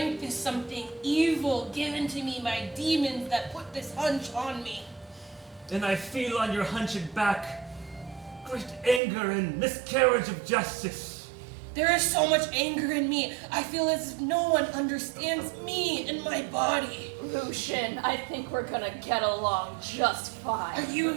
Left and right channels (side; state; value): left; drops out; at 9.0 s